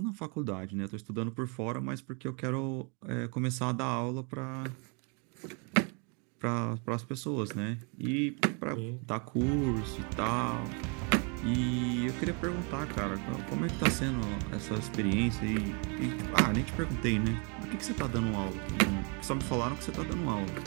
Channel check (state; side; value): quieter; left; 35.5 dB